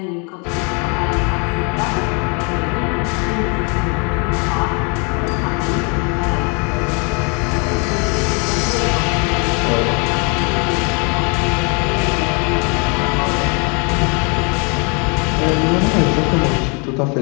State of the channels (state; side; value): quieter; right; 33.8 dB